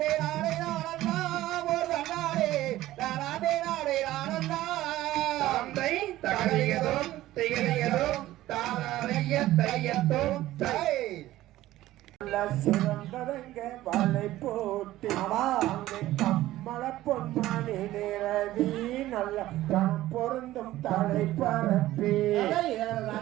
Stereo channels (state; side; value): quieter; left; 15.4 dB